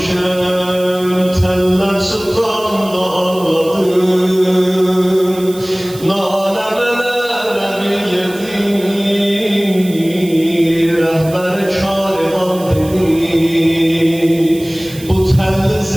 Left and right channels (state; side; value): noise; right; hiss, 17 dB below the sound